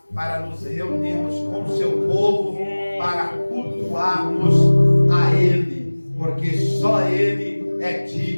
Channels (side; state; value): both; inverted; correlation -1.00